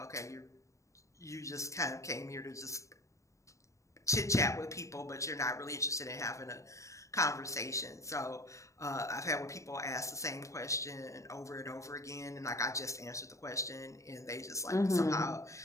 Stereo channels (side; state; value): right; late; 0.15 ms